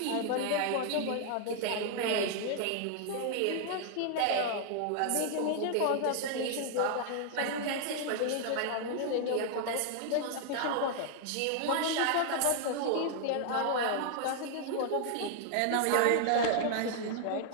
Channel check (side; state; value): both; different; correlation 0.00